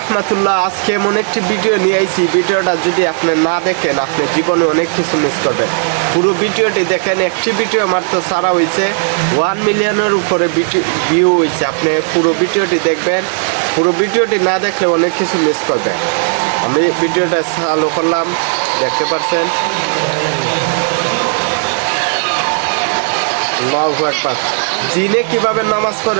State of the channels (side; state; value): left; silent; digital silence